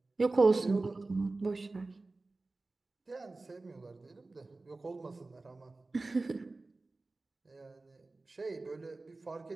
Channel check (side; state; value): left; quieter; 3.3 dB